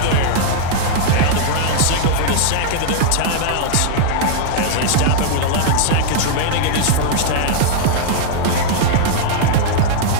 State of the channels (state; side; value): different; both; correlation -0.01